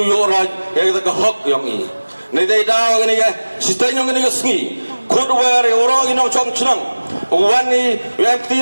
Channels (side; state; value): both; inverted; correlation -1.00